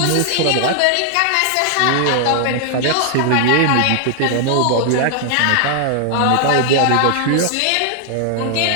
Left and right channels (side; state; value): both; different; correlation 0.00